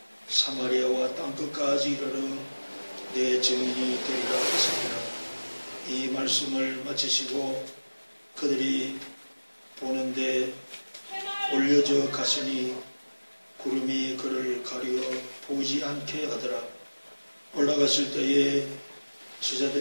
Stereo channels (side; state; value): both; inverted; correlation -1.00